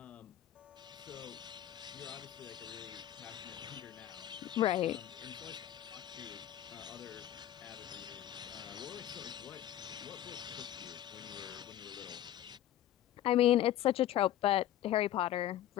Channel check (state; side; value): quieter; right; 12.5 dB